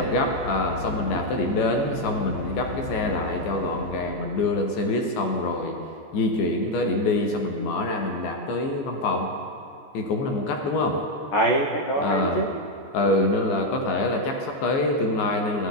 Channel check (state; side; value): late; right; 14 ms